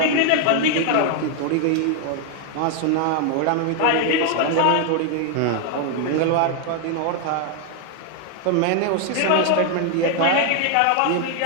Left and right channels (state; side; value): different; both; correlation 0.00